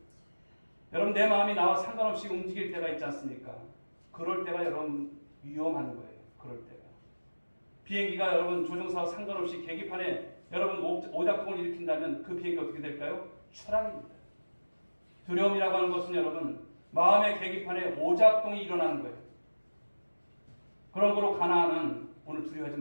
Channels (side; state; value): both; inverted; correlation -1.00